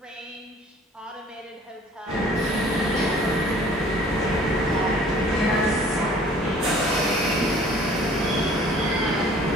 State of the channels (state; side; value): normal; both; correlation 0.52